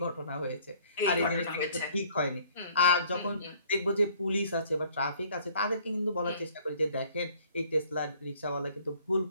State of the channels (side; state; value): both; inverted; correlation -0.58